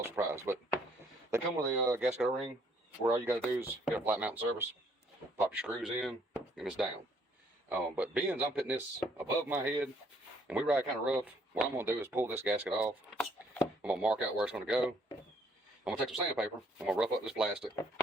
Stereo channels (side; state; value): both; normal; correlation 0.65